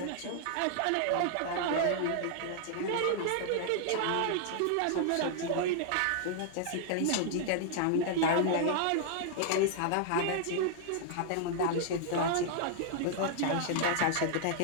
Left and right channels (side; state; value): both; different; correlation -0.01